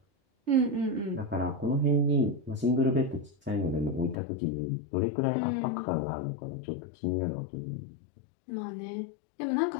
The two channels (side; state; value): right; drops out; at 4.2 s